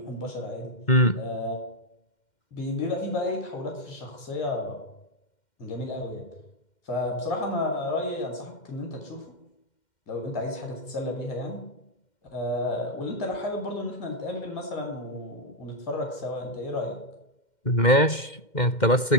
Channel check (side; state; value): right; late; 2.1 ms